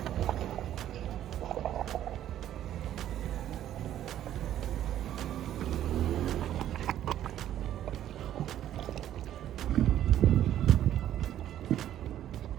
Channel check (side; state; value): left; quieter; 11.6 dB